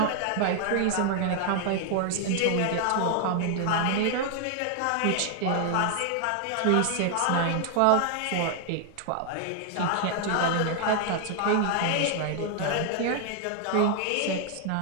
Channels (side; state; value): both; different; correlation 0.00